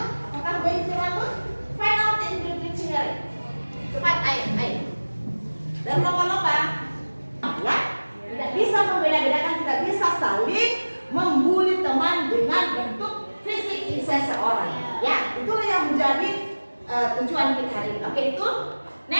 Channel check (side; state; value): both; inverted; correlation -1.00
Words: Apakah wavy rambut? Find out in the dictionary. Cepat, ayo. Dan lomba-lomba, ya, tidak bisa membeda-bedakan, tidak bisa saling membuli teman dengan bentuk fisik seseorang. Ya, itulah yang menjadi tujuan kita hari ini. Oke, itu